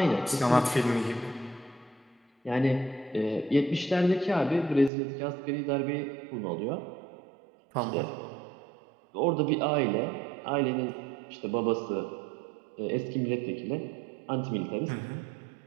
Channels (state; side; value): drops out; left; at 4.9 s